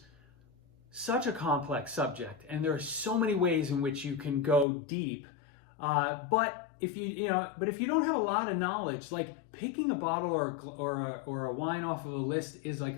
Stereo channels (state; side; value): drops out; right; at 4.7 s